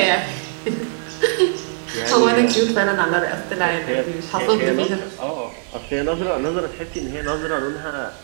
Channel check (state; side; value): silent; left; 64 dB below the other